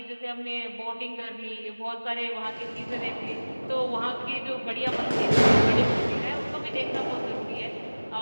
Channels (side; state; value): both; inverted; correlation -1.00